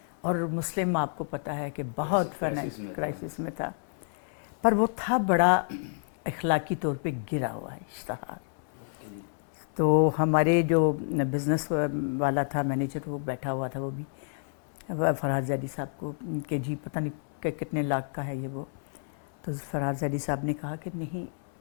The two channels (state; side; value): silent; right; 58 dB below the other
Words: اور مسلم آپ کو پتہ ہے کہ بہت کرائسس میں تھا, پر وہ تھا بڑا اخلاقی طور پہ گرا ہوا ہے اشتہار. تو ہمارے جو بزنس والا تھا مینیجر وہ بیٹھا ہوا تھا, وہ بھی فرحات زیدی صاحب کو کہ جی پتہ نہیں کہ کتنے لاکھ کا ہے یہ وہ. تو فرحات زیدی صاحب نے کہا کہ نہیں,